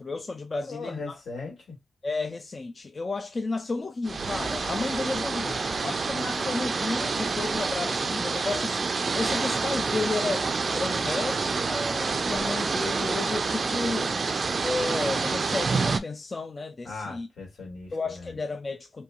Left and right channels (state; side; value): normal; both; correlation 0.90